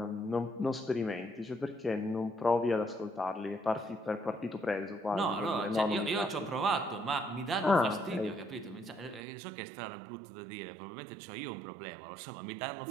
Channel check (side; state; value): left; drops out; at 9.2 s